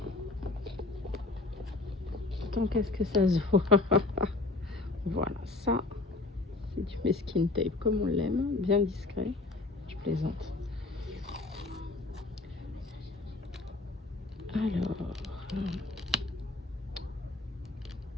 tant qu'est-ce que ça se voit. Voilà, ça c'est du masking tape comme on l'aime, bien discret, je plaisante. Alors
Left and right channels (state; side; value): quieter; right; 3.3 dB